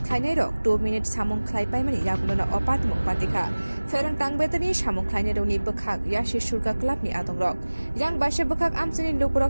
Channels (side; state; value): both; inverted; correlation -1.00